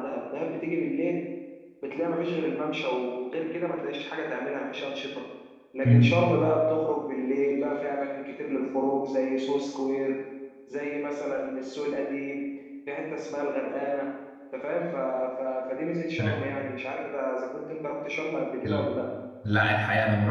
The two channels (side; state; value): both; identical; correlation 1.00